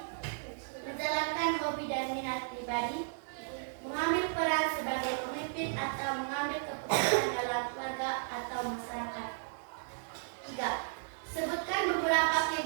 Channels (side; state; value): left; silent; 55 dB below the other